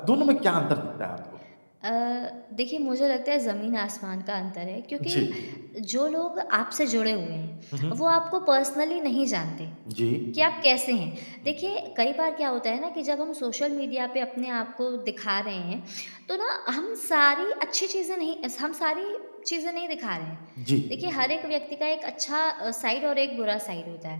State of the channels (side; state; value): both; inverted; correlation -1.00